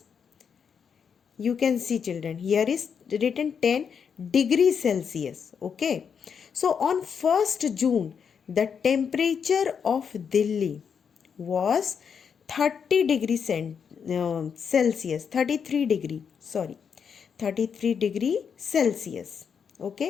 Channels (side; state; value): right; quieter; 6.9 dB